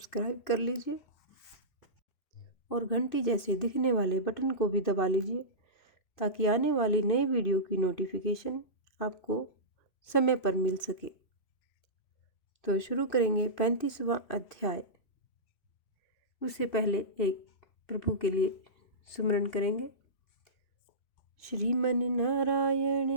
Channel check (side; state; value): right; late; 2.6 ms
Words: कर लीजिए और घंटी जैसे दिखने वाले बटन को भी दबा लीजिए ताकि आने वाली नई वीडियो की नोटिफिकेशन आपको समय पर मिल सके। तो शुरू करेंगे 35वां अध्याय। उससे पहले एक प्रभु के लिए सुमरन करेंगे। श्रीमन नारायण